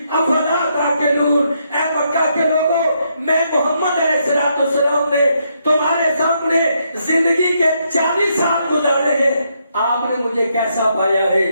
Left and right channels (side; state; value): both; inverted; correlation -0.76